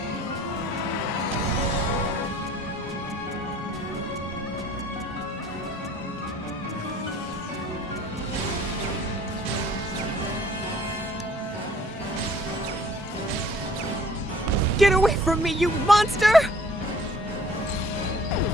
Get away from me, you monster!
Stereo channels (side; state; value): both; normal; correlation 0.54